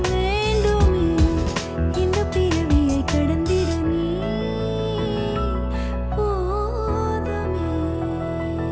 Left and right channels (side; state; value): both; identical; correlation 1.00